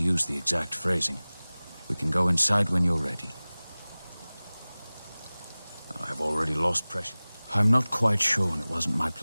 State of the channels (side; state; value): both; inverted; correlation -0.99